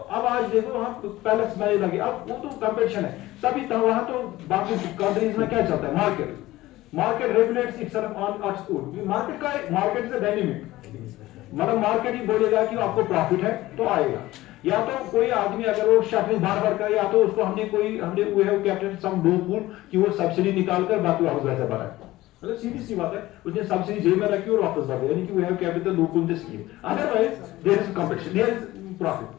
आज देखो वहाँ पैलेस में लगे, अब वो तो कंपटीशन है तभी तो, वहाँ तो बाकी कंट्रीज में क्या चलता है, market regulates itself on its own. Market is a dynamic, मतलब मार्केट ही बोलेगा कि आपको प्रॉफिट है तो आएगा, या तो कोई आदमी अगर वो शटरिंग बार कर, या तो उसको हमने वी हैव कैप्टेड सम लूपहोल कि वो सब्सिडी निकाल कर बाकी वापस वैसे भरा है। मतलब सीधी सी बात है, उसने सब्सिडी जेब में रखी और वापस भर दिया, यानी कि we have capped the loophole the scheme. Otherwise there is competition, there is profit.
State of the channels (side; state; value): right; quieter; 17.2 dB